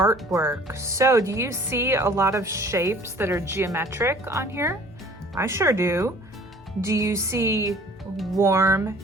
So do you see a lot of shapes that are geometric on here? I sure do. Do you see warm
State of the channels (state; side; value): normal; both; correlation 0.51